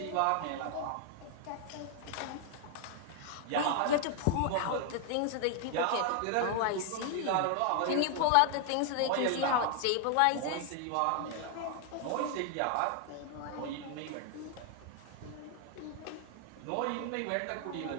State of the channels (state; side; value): different; both; correlation 0.00